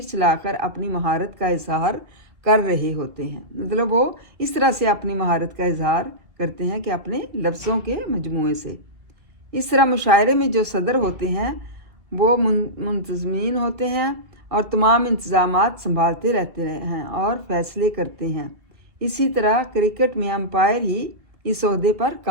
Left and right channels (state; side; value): late; left; 2.2 ms